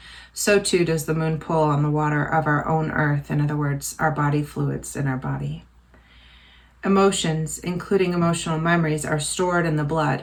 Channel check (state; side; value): identical; both; correlation 1.00